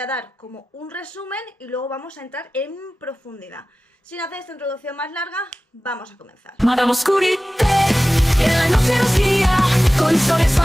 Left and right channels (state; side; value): normal; both; correlation 0.96